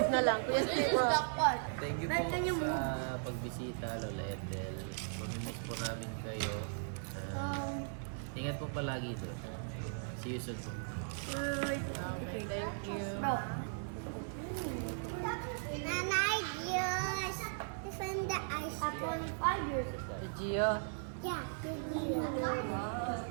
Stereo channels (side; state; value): left; silent; 53 dB below the other